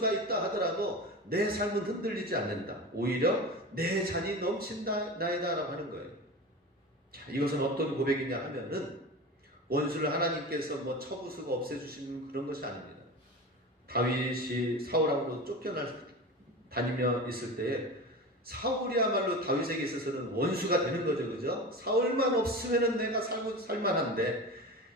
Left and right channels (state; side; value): normal; both; correlation 0.29